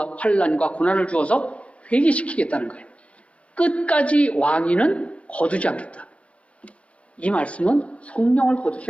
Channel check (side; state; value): right; late; 0.062 ms